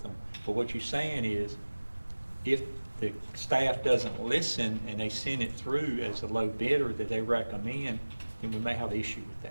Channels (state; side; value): inverted; both; correlation -1.00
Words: them. But what you're saying is, if the staff doesn't listen and they send it through as a low bidder that they recommend, then we may have an issue with